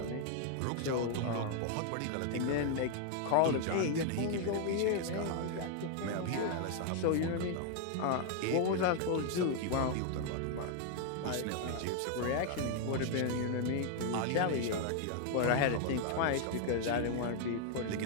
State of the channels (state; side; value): different; both; correlation 0.00